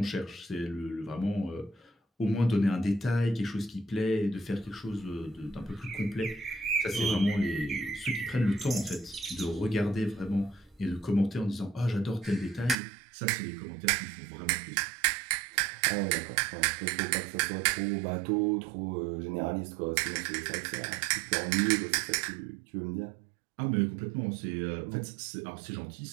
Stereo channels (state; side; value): drops out; left; at 12.8 s